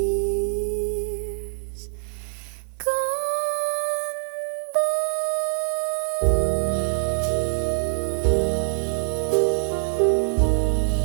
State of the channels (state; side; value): silent; left; digital silence